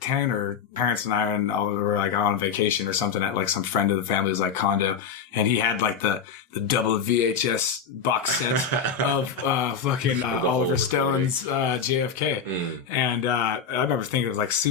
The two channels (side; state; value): right; quieter; 6.5 dB